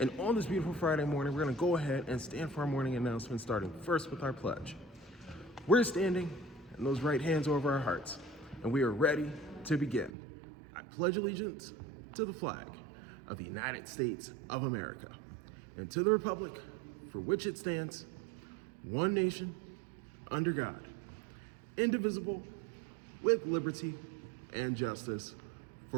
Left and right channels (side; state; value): left; drops out; at 10.1 s